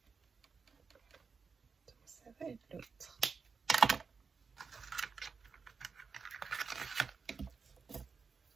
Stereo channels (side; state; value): left; quieter; 5.1 dB